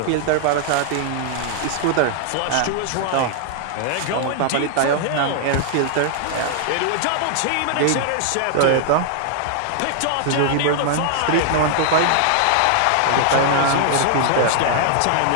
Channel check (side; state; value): both; different; correlation 0.00